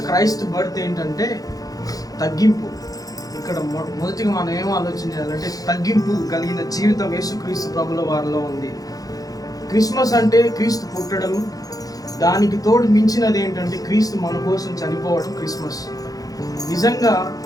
క్రైస్ట్ బర్త్ ఏంటంటే తగ్గింపు. ఇక్కడ మొదటిగా మనం ఏం ఆలోచన చేయాలంటే తగ్గింపు కలిగిన జీవితం యేసుక్రీస్తు ప్రభుల వారిలో ఉంది. క్రిస్మస్ అంటే క్రీస్తు పుట్టడం, దానికి తోడు మించినది ఏంటంటే క్రీస్తు మన కోసం చనిపోవడం క్రిస్మస్. నిజంగా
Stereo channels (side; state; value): right; late; 0.18 ms